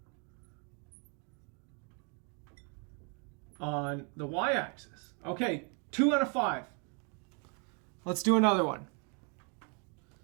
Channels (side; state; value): left; quieter; 37.3 dB